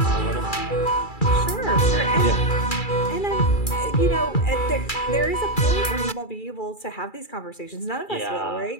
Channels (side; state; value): right; late; 2.3 ms